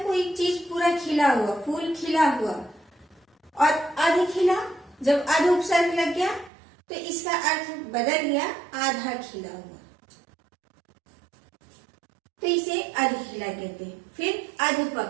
कोई चीज पूरा खिला हुआ, फूल खिला हुआ। और अधखिला, जब अध उपसर्ग लग गया तो इसका अर्थ बदल गया, आधा खिला हुआ, तो इसे अधखिला कहते हैं। फिर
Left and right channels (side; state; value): left; drops out; at 6.5 s